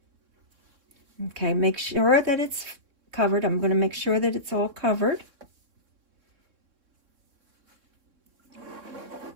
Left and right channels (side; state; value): left; late; 3.6 ms